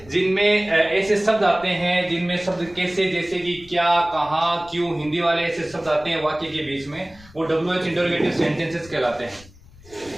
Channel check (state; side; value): noise; left; rumble, 23 dB below the sound